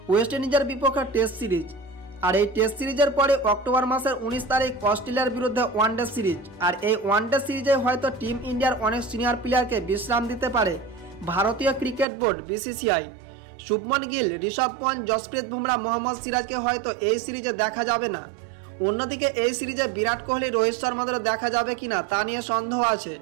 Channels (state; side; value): drops out; left; at 12.1 s